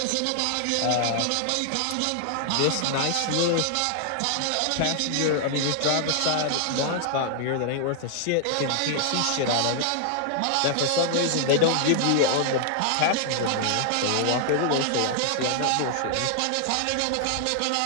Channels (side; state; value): both; different; correlation -0.01